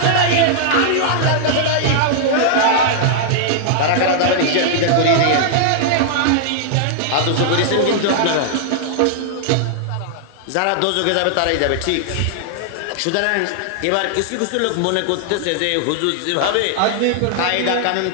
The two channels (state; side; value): different; both; correlation -0.01